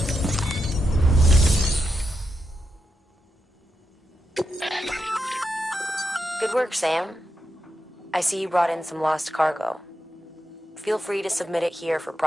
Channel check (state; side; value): normal; both; correlation 0.86